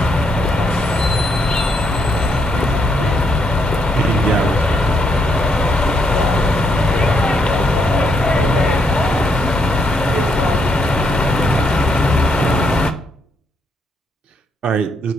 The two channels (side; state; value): both; normal; correlation 0.75